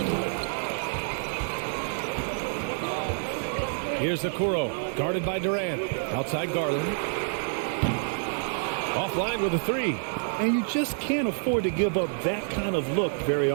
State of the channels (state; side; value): silent; left; digital silence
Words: Here's Okoro, guarded by Durant. Outside Garland. Offline with a 3. And you just can't afford to give up that kind of look very